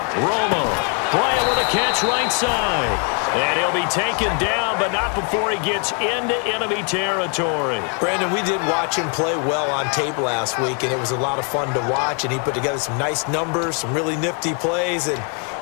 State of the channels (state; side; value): quieter; right; 39.2 dB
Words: Romo. Bryant with a catch right side. And he'll be taken down, but not before he gets into enemy territory. Brandon, we did watch him play well on tape last week, and it was a lot of fun to watch. And he put together some nice numbers, some really nifty plays, and